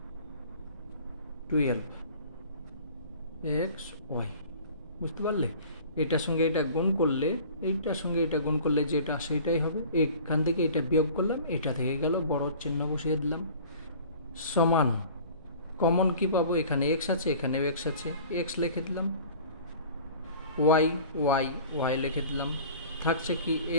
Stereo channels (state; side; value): inverted; both; correlation -0.45